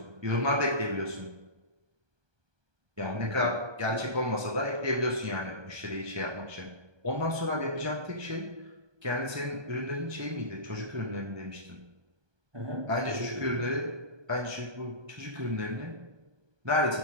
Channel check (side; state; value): left; late; 1.2 ms